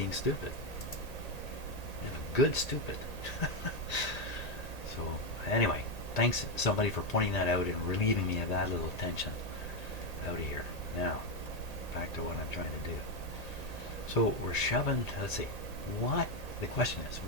stupid. I'm a good stupid. So anyway, thanks somebody for pointing that out and relieving me of that little tension out of here. Now, back to what I'm trying to do. So we're shoving, let's see, the question is,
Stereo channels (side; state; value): right; late; 1.8 ms